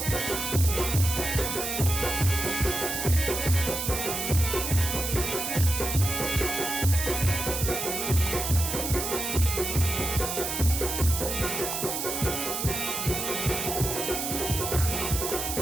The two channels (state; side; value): noise; right; hiss, 3 dB below the sound